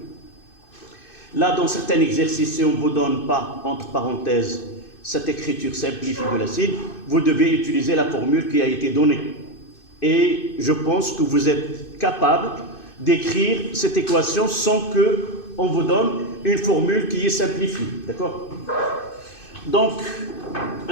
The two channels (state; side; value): late; right; 2.6 ms